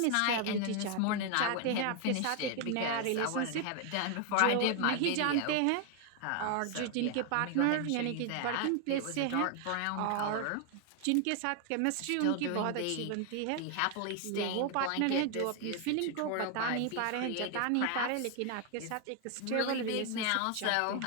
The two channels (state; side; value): different; both; correlation 0.01